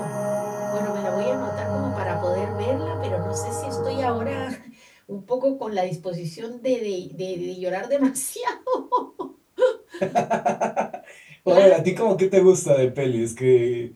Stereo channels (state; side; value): identical; both; correlation 1.00